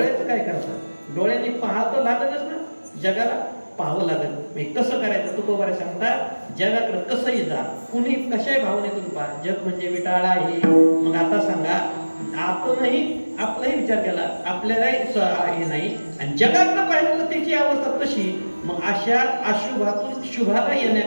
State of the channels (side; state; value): both; inverted; correlation -1.00